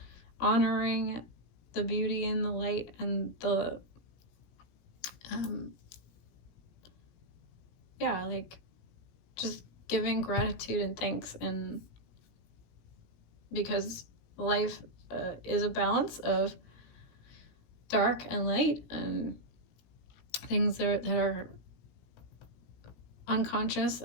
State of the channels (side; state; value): right; late; 17 ms